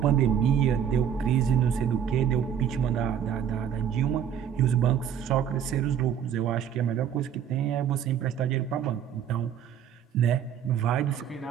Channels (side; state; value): left; quieter; 8.8 dB